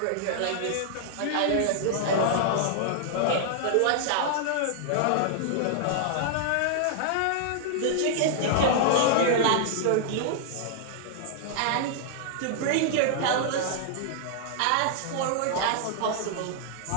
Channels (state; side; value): different; both; correlation -0.01